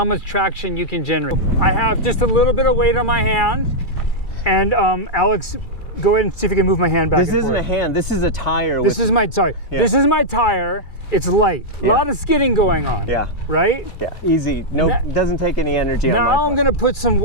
much traction you can generate. I have just a little bit of weight on my hand, and Alex, go ahead and see if you can move my hand back and forth. This isn't a hand, this is a tire. This is my tire. It's light. A lot of skidding going on. Yeah. Right? Yeah, easy. No, doesn't take any energy. Now I'm gonna put some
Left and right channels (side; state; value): right; late; 2.3 ms